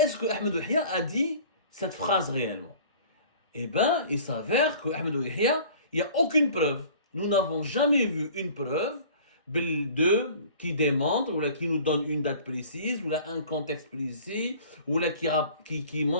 que Ahmed Yahya a dit cette phrase réellement? Eh bien, il s'avère que Ahmed Yahya, il n'y a aucune preuve. Nous n'avons jamais vu une preuve qui démontre, ou là, qui nous donne une date précise, ou là, un contexte précis, ou là, qui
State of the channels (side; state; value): both; inverted; correlation -0.46